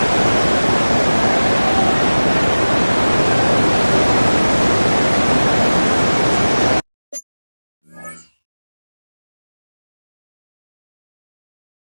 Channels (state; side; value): inverted; both; correlation -1.00